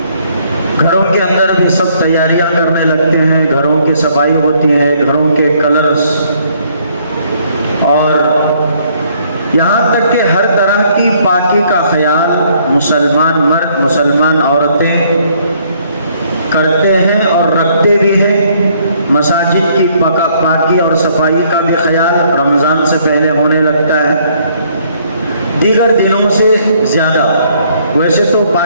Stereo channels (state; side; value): inverted; both; correlation -0.66